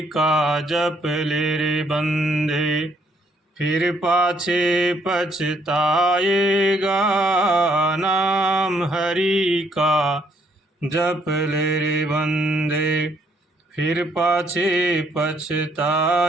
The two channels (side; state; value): both; normal; correlation 0.69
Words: का जप ले रे बंदे। फिर पाछे पछताएगा। नाम हरि का जप ले रे बंदे। फिर पाछे